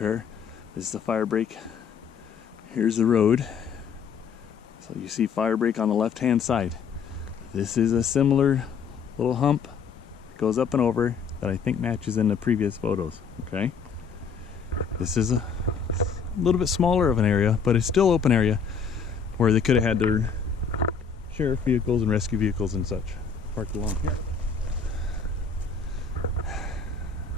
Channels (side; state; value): right; quieter; 6.0 dB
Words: This is the fire break. Here's the road. So you see fire break on the left hand side. This is a similar little hump that goes up and over that I think matches in the previous photos. Okay, this is a little bit smaller of an area, but it's still open area where they could have had their sheriff vehicles and rescue vehicles and such parked along here.